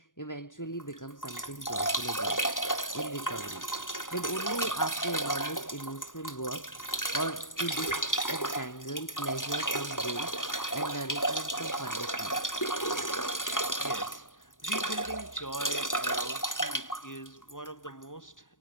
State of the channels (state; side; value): late; right; 0.88 ms